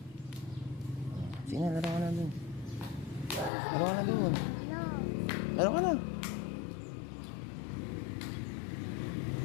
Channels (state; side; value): drops out; right; at 3.5 s